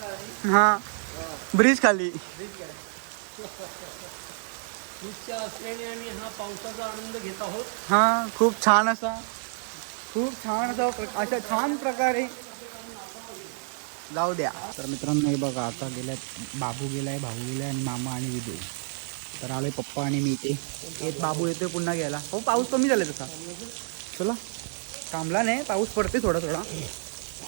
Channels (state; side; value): silent; left; 59 dB below the other